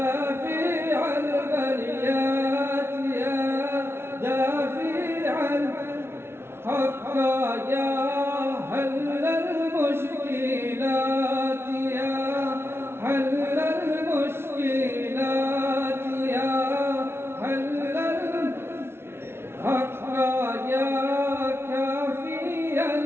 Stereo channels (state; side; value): late; left; 0.12 ms